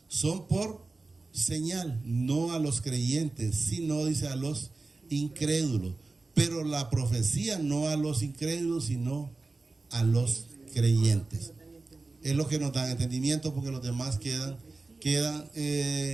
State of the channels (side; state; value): left; quieter; 3.6 dB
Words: son por señal, no a los creyentes, sino, dice, a los incrédulos. Pero la profecía no a los incrédulos, sino a los creyentes. Es lo que nos da entendimiento, porque los demás quedan